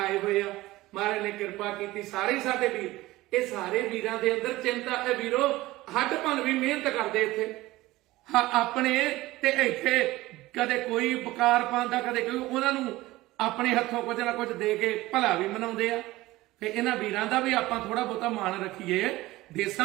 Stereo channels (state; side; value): quieter; left; 18.3 dB